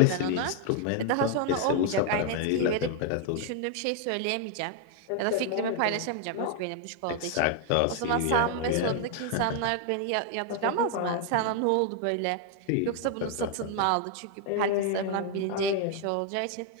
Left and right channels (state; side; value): different; both; correlation 0.00